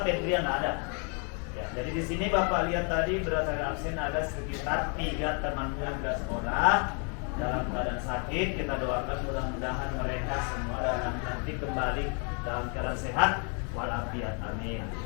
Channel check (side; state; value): right; quieter; 38.2 dB